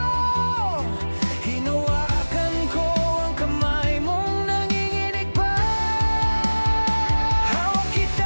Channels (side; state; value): both; inverted; correlation -1.00